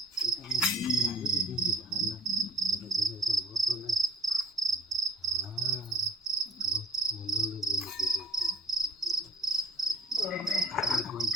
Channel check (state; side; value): normal; both; correlation 0.51